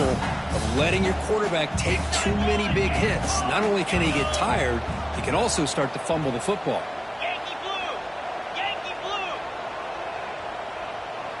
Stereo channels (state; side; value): identical; both; correlation 1.00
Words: of letting your quarterback take too many big hits. Not only can he get tired, he can also start to fumble the football.